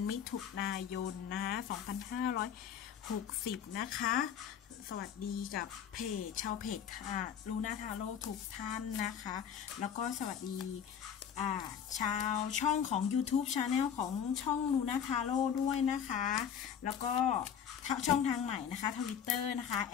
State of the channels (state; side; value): quieter; right; 8.2 dB